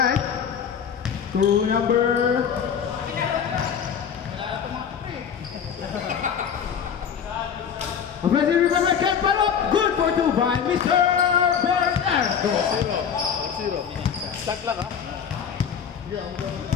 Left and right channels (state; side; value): quieter; right; 7.6 dB